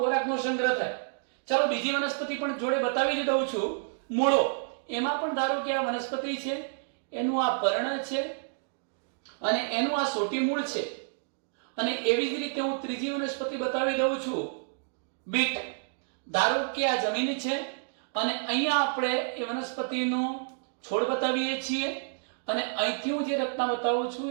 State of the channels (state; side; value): silent; left; digital silence